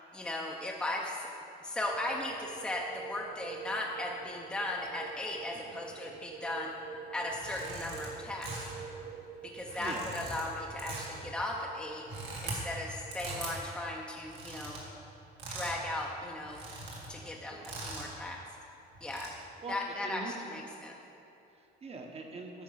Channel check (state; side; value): normal; both; correlation 0.47